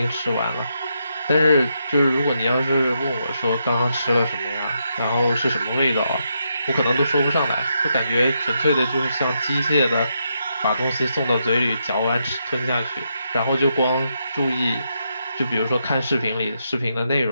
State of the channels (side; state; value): both; inverted; correlation -0.81